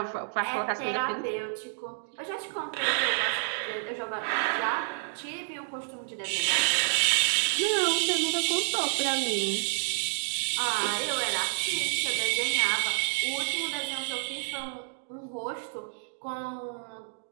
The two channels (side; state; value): left; silent; digital silence